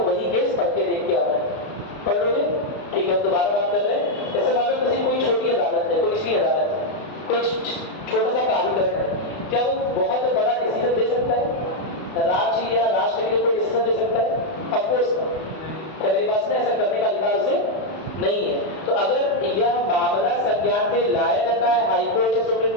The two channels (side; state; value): right; late; 32 ms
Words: वही केस पढ़ के देख के आना है। पढ़ लोगे? ठीक है, हम दोबारा बात कर रहे हैं। जैसे मान लो किसी कोई छोटी अदालत है, कोई निचली अदालत है, कोई छोटा सा प्राधिकरण है, क्या वो बहुत बड़ा डिसीजन दे सकता है? राज्य या राष्ट्र के लिए कोई डिसीजन दे सकता है? ऑफकोर्स क्या मेरी बात में ऐसा करने का अधिकार उसे नहीं है। तो अगर यह मामला संज्ञान में लाया जाता है हाई कोर्ट या सुप्रीम